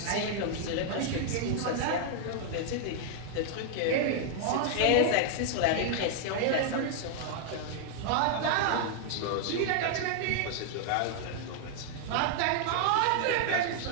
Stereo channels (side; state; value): both; different; correlation 0.00